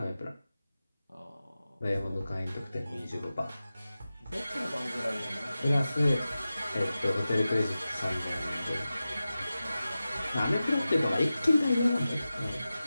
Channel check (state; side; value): inverted; both; correlation -0.94